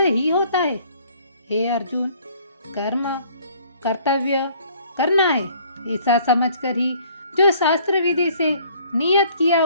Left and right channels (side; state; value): both; inverted; correlation -0.57